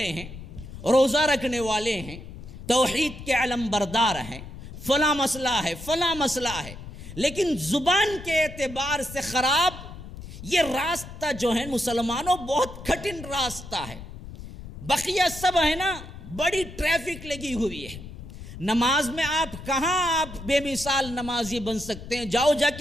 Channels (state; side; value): noise; left; rumble, 13 dB below the sound